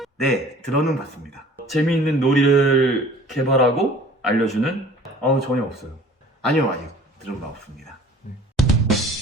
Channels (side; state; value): both; normal; correlation 0.48